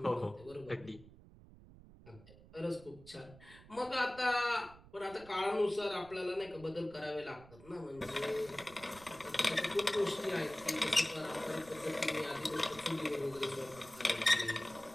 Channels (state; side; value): noise; right; rumble, 20 dB below the sound